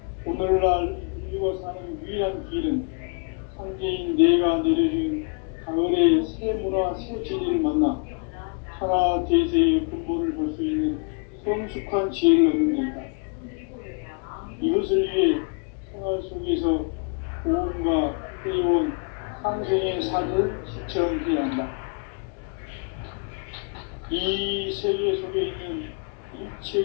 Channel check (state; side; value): quieter; right; 38.5 dB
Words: 오늘날 인류가 사는 유일한 길은 상제인 내가 내려준 가을의 새 문화 새 진리를 만나 천하 대세의 근본을 볼 수 있는 성숙한 지혜를 얻는 데이다. 이것을 위해 생활 속에서 보험과 회원, 상생의 삶을 실천해야 한다. 이 세계 속에 있는